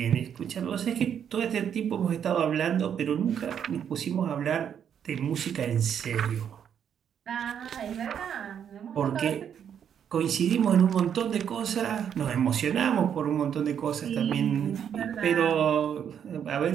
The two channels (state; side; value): quieter; left; 8.5 dB